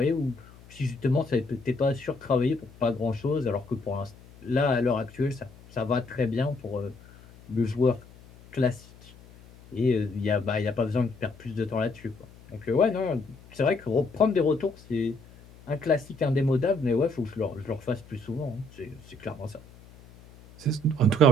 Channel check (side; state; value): left; noise; hum, 22 dB below the sound